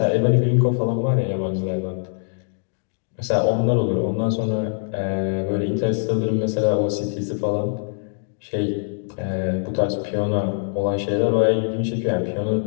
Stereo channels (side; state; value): right; silent; digital silence